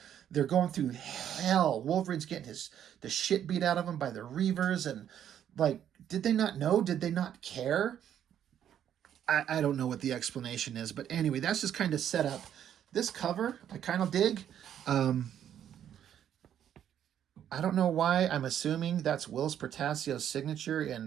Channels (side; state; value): left; quieter; 9.9 dB